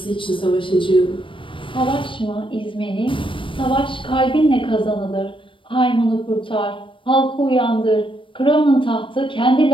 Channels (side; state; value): right; late; 0.25 ms